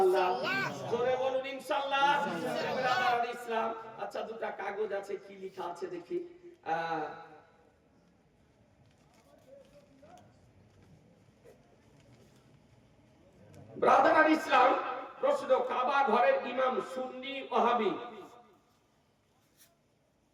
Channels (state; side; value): identical; both; correlation 1.00